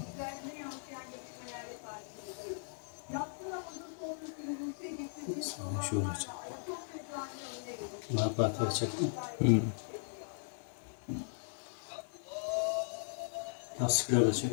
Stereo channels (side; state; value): right; silent; 53 dB below the other